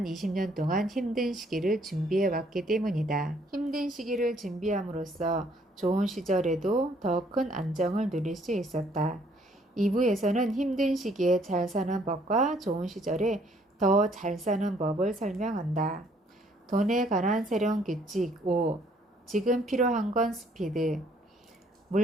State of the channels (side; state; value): both; normal; correlation 0.64